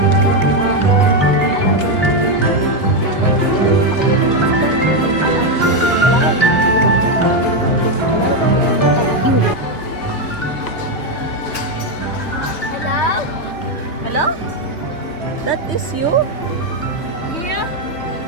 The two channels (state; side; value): late; right; 3.1 ms